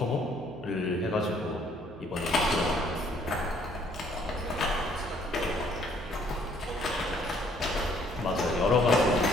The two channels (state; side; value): noise; right; hum, 17 dB below the sound